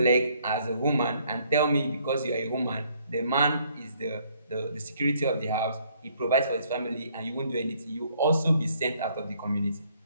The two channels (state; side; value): inverted; both; correlation -0.65